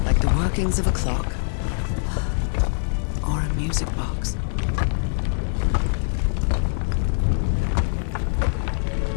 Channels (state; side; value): silent; right; digital silence